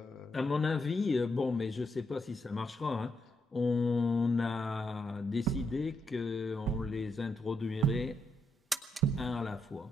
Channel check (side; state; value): both; normal; correlation 0.80